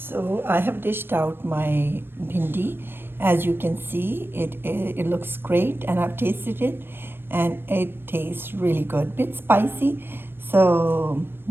I have dished out my bhindi. As you can see, it looks great, and I've tasted it, and it tastes really good. Bit spicy, so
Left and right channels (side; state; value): left; late; 0.10 ms